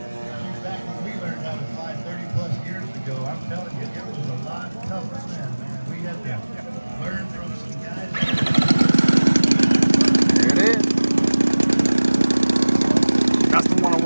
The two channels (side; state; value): both; inverted; correlation -1.00